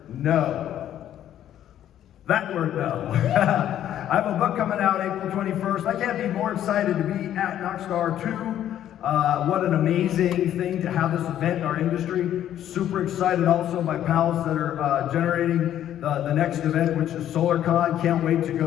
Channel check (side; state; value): right; quieter; 11.2 dB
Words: no. That word no. I have a book coming out April 21st. I can't be more excited to be at Knockstar 2. What an amazing thing to have this event in our industry. Super excited also, my pals that are generating the next event, which is SolarCon. Can't wait to